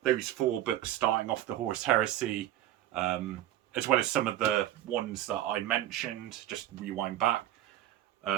those 4 books starting off the Horus Heresy, as well as some of the ones that I mentioned, just rewind back,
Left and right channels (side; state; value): left; quieter; 13.3 dB